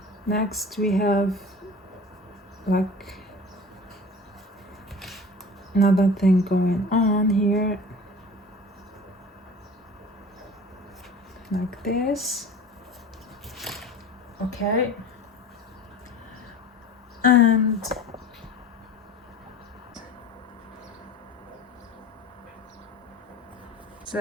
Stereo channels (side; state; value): both; normal; correlation 0.39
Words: Next we have like another thing going on here, like this. Okay, and